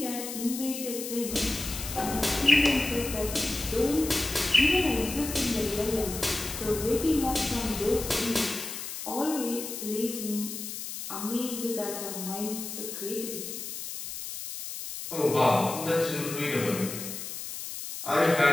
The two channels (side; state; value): left; noise; hiss, 7 dB below the sound